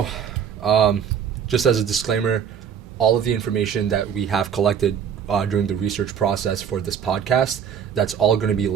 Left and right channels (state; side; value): quieter; left; 8.0 dB